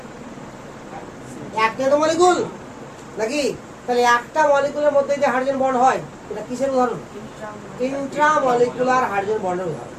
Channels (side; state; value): both; identical; correlation 1.00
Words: একটা তো মলিকুল নাকি? তাহলে একটা মলিকুলের মধ্যে যে হাইড্রোজেন বন্ড হয়, এটা কিসের উদাহরণ? ইন্ট্রামলিকুলার হাইড্রোজেন বন্ডের উদাহরণ।